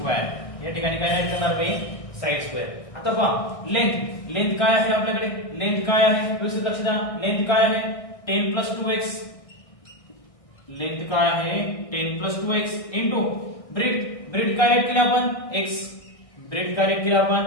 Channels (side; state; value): right; late; 1.6 ms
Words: या ठिकाणी काय राईट करणार मी, साइड स्क्वेअर. आता पहा लेंथ, लेंथ काय आहे आपल्याकडे, लेंथ काय आहे व्यवस्थित लक्ष द्या, लेंथ काय आहे 10 + 2x, लेंथ काय आहे 10 + 2x इनटू ब्रेड, ब्रेड काय राईट केलं आपण x, ब्रेड काय राईट केलं आपण